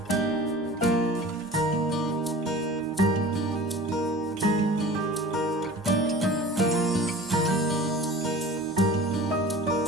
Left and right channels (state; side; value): normal; both; correlation 0.40